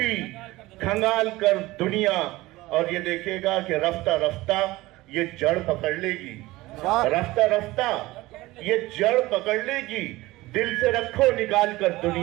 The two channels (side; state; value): left; quieter; 19.1 dB